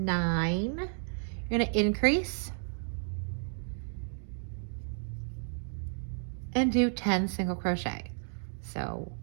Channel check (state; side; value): silent; left; 56 dB below the other